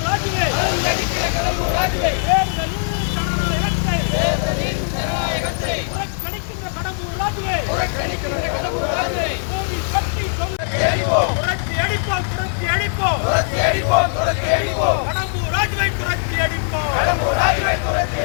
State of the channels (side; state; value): right; silent; digital silence